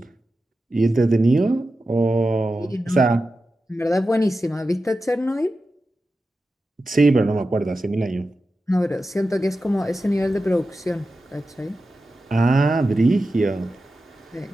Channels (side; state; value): both; normal; correlation 0.92